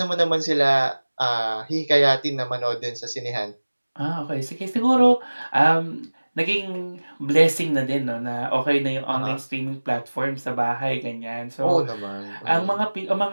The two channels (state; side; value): inverted; both; correlation -1.00